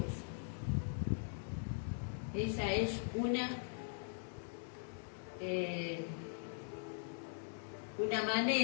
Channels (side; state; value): right; silent; digital silence